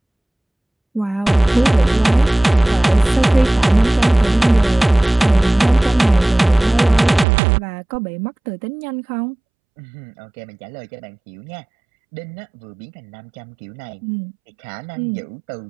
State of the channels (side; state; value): left; drops out; at 7.2 s